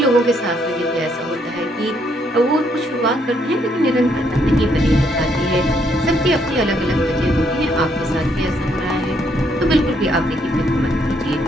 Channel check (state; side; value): normal; both; correlation 0.72